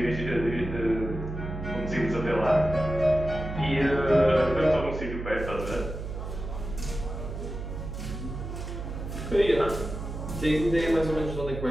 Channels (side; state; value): right; noise; hum, 7 dB below the sound